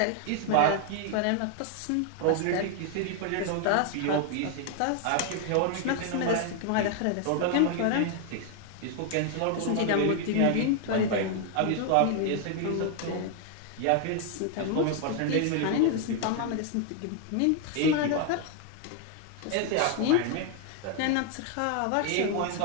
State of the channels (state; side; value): different; both; correlation 0.00